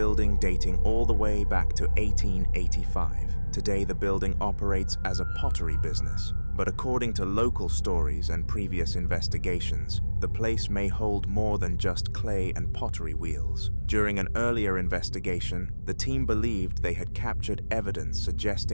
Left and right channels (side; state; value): both; inverted; correlation -1.00